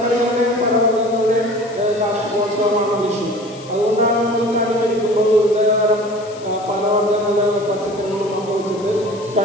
ഫലവർഗ്ഗങ്ങളുടെയും കാർഷികോത്സവമാണ് വിഷു. അതുകൊണ്ടാണ് നമ്മൾ കണി ഒരുക്കുമ്പോൾ വിവിധതരം ഫലവർഗ്ഗങ്ങളും പച്ചക്കറികളും ഒക്കെ വെച്ചിട്ട്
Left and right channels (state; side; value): noise; left; hiss, 21 dB below the sound